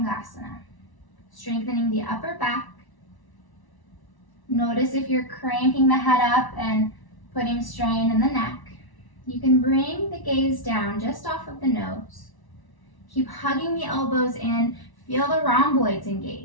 Strengthening the upper back. Notice if you're cranking the head up and putting strain in the neck. You can bring the gaze down just off of the nose. Keep hugging the elbows in. Feel the rhomboids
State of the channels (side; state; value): right; late; 1.1 ms